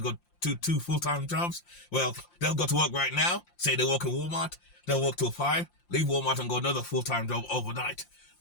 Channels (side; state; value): right; late; 5.7 ms